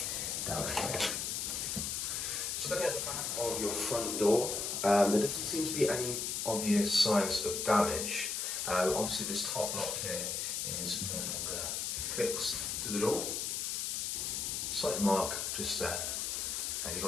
down here. So looking at the back of your front door, there doesn't seem to be any obvious signs of damage. Obviously this top lock here is no longer fixed to the door. Slight mark just there. And you've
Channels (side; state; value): left; noise; hiss, 1 dB below the sound